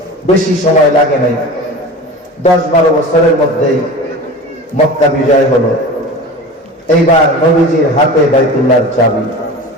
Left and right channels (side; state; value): both; normal; correlation 0.34